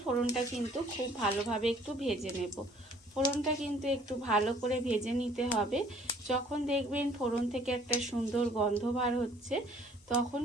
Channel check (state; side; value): normal; both; correlation 0.57